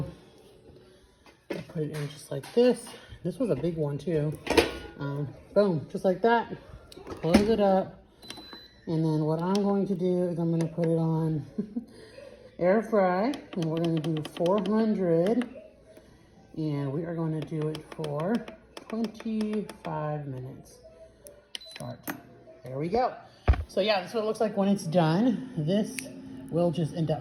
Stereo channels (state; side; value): identical; both; correlation 1.00